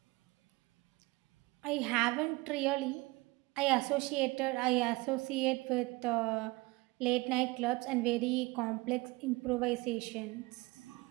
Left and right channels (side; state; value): left; quieter; 23.2 dB